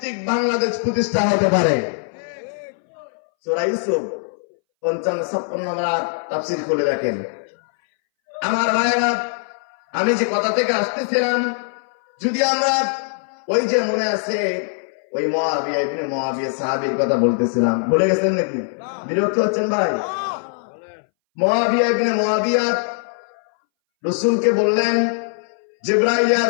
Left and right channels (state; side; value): silent; right; 63 dB below the other